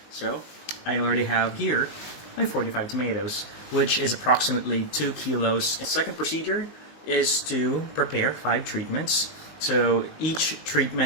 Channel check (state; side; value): late; right; 19 ms